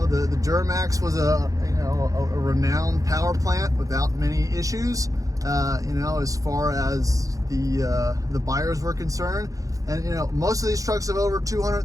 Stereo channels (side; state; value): left; late; 0.16 ms